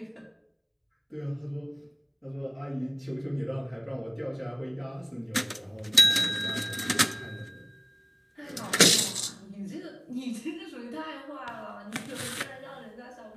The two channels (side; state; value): both; identical; correlation 1.00